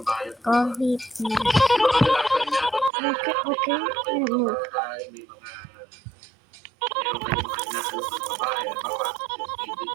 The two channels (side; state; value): left; drops out; at 2.9 s